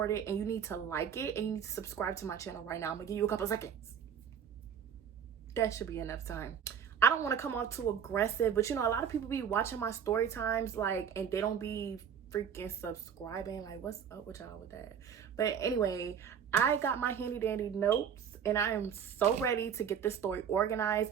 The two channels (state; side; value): quieter; left; 7.9 dB